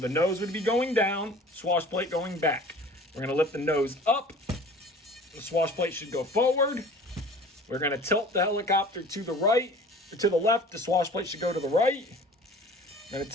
nose would be going down, swash plate going back. We're going to lift the nose up. The swash plate should go forward. We're going to tilt the helicopter to the right. To the left, the swash plate should go to the right. We're going to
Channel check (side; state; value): both; normal; correlation 0.45